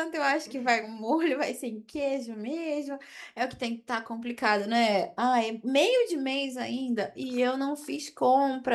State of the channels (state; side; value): identical; both; correlation 1.00